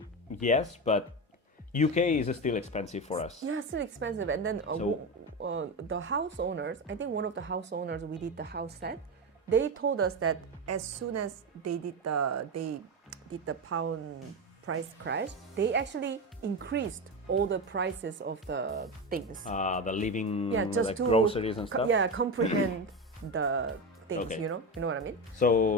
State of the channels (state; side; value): normal; both; correlation 0.18